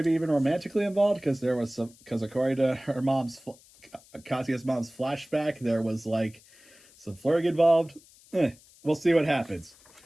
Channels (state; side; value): noise; left; hiss, 26 dB below the sound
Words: even romantically involved, because according to her Kazuya's mom's flashback, there was like some flirting involved. We'll see what happens.